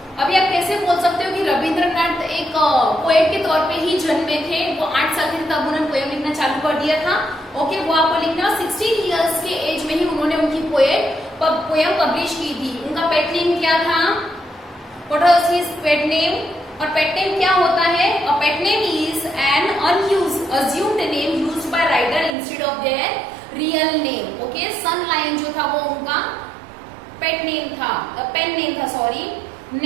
अभी आप कैसे बोल सकते हो कि रविंद्रनाथ एक पोएट के तौर पे ही जन्मे थे, वो 8 साल के तब उन्होंने पोएम लिखना चालू कर दिया था। ओके, वो आपको लिखना 16 इयर्स के एज में ही उन्होंने उनकी पोएम पब्लिश की थी। उनका पेट नेम क्या था? What was his pet name? और पेट नेम क्या होता है? A pet name is an assumed name used by writer instead of their real name. Okay, sun lion जो था वो उनका पेट नेम था, पेन नेम था, सॉरी।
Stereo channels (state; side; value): drops out; left; at 22.4 s